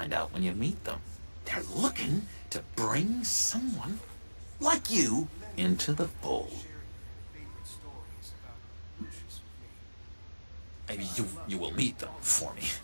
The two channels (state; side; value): inverted; both; correlation -1.00